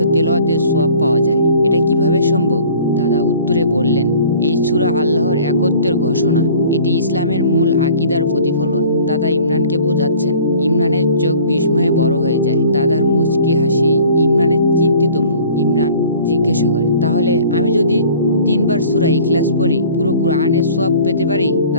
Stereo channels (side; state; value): both; inverted; correlation -0.49